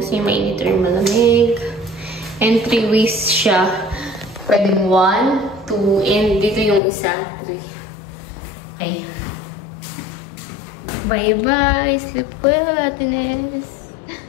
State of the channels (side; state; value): right; drops out; at 6.8 s